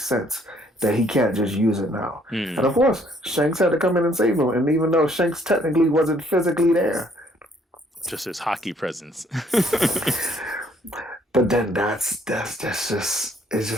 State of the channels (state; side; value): normal; both; correlation 0.64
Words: sense that he can't just use it now. And of course, Shanks had to come in and save him. And even though Shanks technically wasn't physically there, just his hockey presence. But then that's just it's